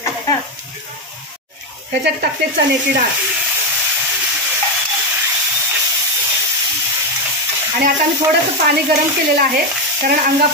ह्याच्यात टाकते चण्याची डाळ. आणि आता मी थोडंसं पाणी गरम केलेलं आहे, कारण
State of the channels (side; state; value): both; normal; correlation 0.07